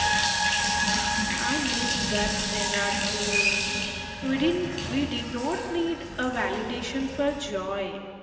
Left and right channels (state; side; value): identical; both; correlation 1.00